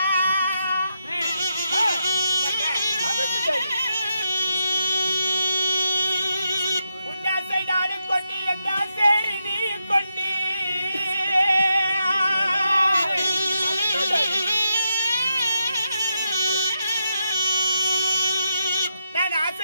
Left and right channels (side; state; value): both; inverted; correlation -0.84